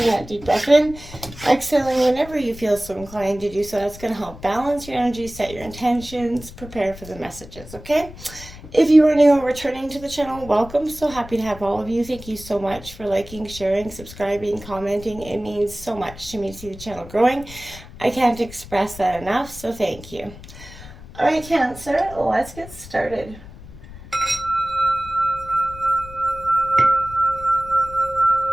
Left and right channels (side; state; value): left; noise; rumble, 16 dB below the sound